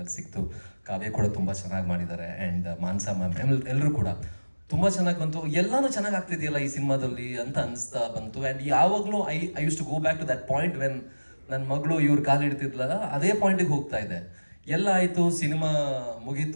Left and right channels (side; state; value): both; inverted; correlation -1.00